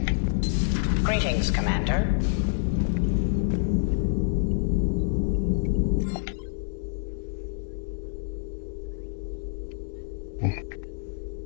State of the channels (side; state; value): right; silent; digital silence